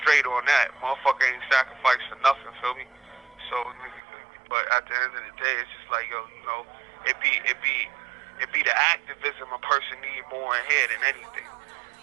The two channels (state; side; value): drops out; left; at 4.0 s